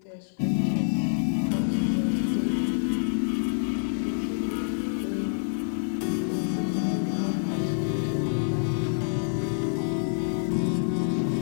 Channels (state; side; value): silent; right; digital silence